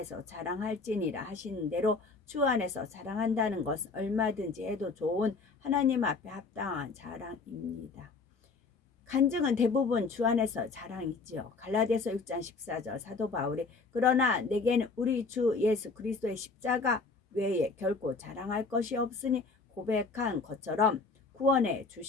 자랑할지니라 하신 대로 주 안에서 자랑한다는 것은 얼마든지 해도 좋은 하나님 앞에 합당한 자랑입니다. 간증은 대부분 주 안에서 자랑이지요. 갈라디아서 6장 14절 사도 바울이 그러나 내게는 우리 주 예수 그리스도의 십자가 외에 결코 자랑할 것이 없으니 고백한 것처럼 구원해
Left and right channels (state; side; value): quieter; right; 4.3 dB